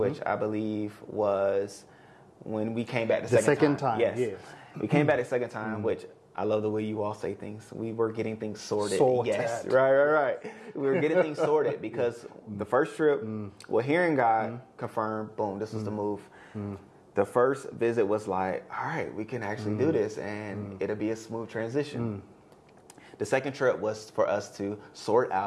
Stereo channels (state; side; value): identical; both; correlation 1.00